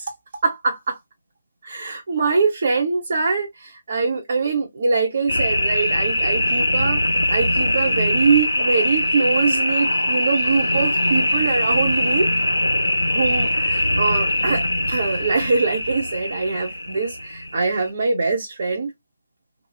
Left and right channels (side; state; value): both; inverted; correlation -0.86